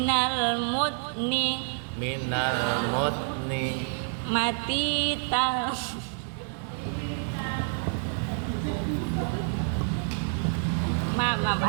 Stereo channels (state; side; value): silent; left; 57 dB below the other